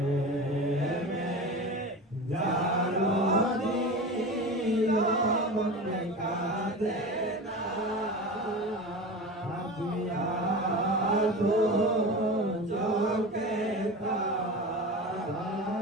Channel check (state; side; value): normal; both; correlation 0.30